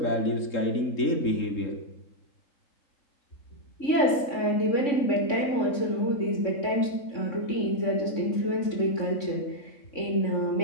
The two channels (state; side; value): late; right; 3.6 ms